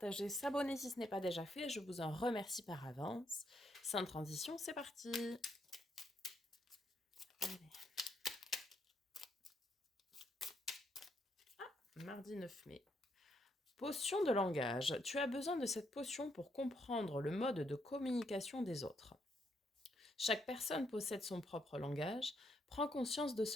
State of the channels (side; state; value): both; normal; correlation 0.76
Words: s'abonner si ce n'est pas déjà fait. Je vous en remercie par avance. Sans transition, c'est parti. Allez. Mardi 9 mai. Potion de langage. Tu as besoin de cette potion pour comprendre le mode de communication des autres. Chaque personne possède son propre langage. Prends conscience de